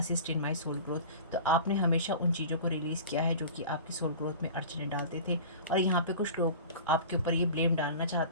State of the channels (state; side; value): inverted; both; correlation -0.37